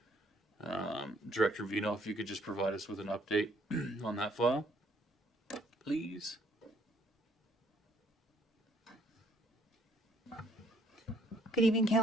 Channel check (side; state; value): both; normal; correlation 0.65